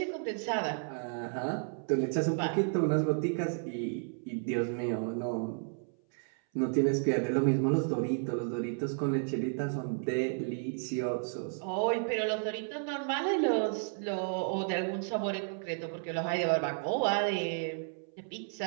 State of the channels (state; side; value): silent; left; 56 dB below the other